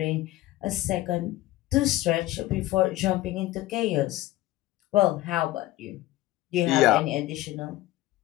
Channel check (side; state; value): right; quieter; 16.4 dB